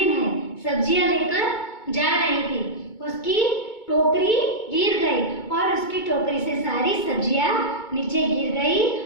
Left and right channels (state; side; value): late; right; 2.2 ms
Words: है सब्जियां लेकर जा रही थी उसकी टोकरी गिर गई और उसकी टोकरी से सारी सब्जियां नीचे गिर गई